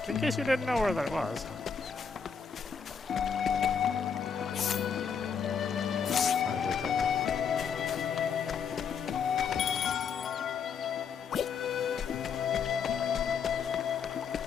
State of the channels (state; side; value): quieter; right; 6.4 dB